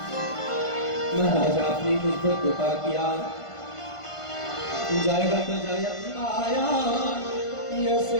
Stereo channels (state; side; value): late; right; 1.5 ms